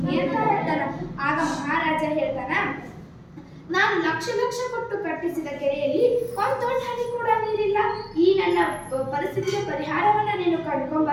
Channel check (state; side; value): identical; both; correlation 1.00